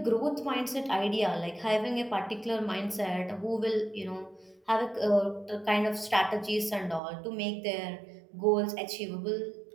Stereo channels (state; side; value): drops out; left; at 7.0 s